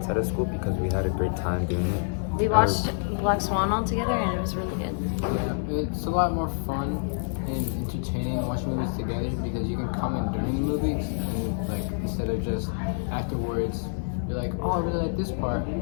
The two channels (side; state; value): right; silent; 60 dB below the other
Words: of school because we had a great time doing it. We watched Black Swan all together, and it was really good. Yeah, it's a lot more fun and entertaining watching movies together because you can comment during the movies and like instead of just afterwards you're like, oh, I really like this part,